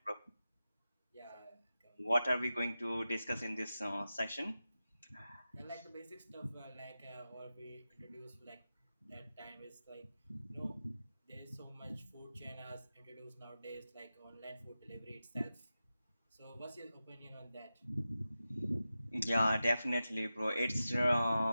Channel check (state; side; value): inverted; both; correlation -0.93